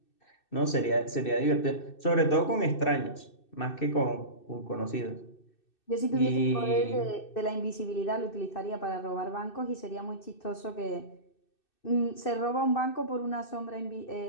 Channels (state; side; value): late; right; 2.6 ms